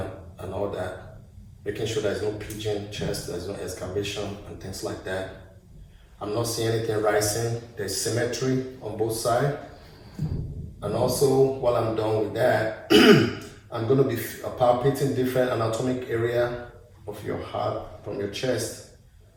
and all that, making sure there's no pigeon chest, there's no excavation and things like that. I'm not seeing anything rising. There's symmetry on both sides. And also, while I'm done with that, I'm going to be palpating different anatomic area of your heart from your chest.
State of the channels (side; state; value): both; identical; correlation 1.00